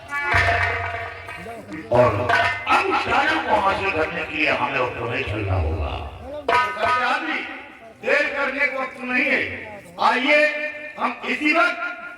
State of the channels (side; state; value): both; identical; correlation 1.00